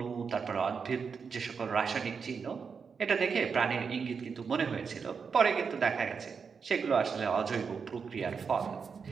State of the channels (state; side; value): quieter; left; 5.8 dB